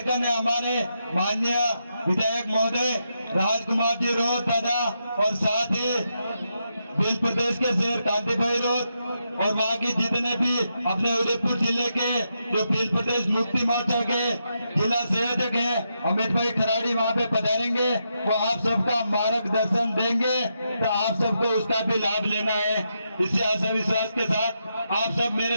है, हमारे माननीय विधायक महोदय राजकुमार जी रोत दादा, और साथ ही भील प्रदेश के शेर कांति भाई रोत, और वहाँ की जितने भी अपने उदयपुर जिले के जो भील प्रदेश मुक्ति मोर्चा के जिला संयोजक हैं, अमित भाई खराड़ी वहाँ पे पधारेंगे। वो आप सबका मार्गदर्शन देंगे, तो आप सबको उसका भी लाभ लेना है। इसी आशा विश्वास के साथ आप सब मेरे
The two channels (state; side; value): inverted; both; correlation -0.83